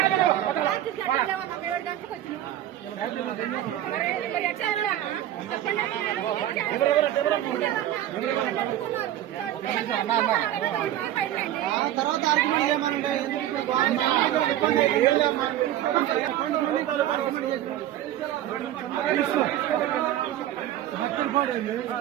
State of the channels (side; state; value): left; quieter; 12.6 dB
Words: తర్వాత ఆర్గ్యుమెంట్ ఏమనండి భక్తులు కూడా